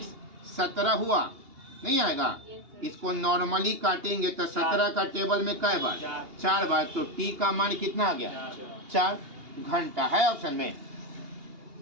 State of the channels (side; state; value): left; late; 2.8 ms